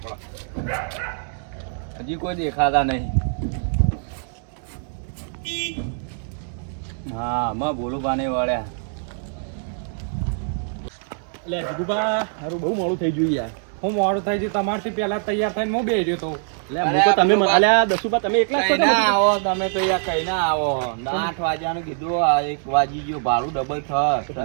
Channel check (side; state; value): left; silent; 63 dB below the other